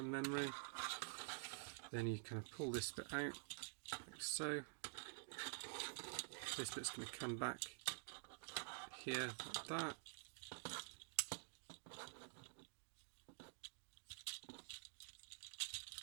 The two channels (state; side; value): silent; left; digital silence